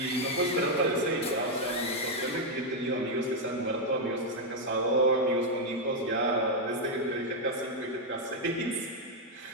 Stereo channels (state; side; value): normal; both; correlation 0.00